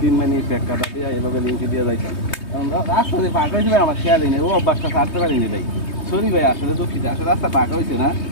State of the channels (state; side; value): late; right; 3.2 ms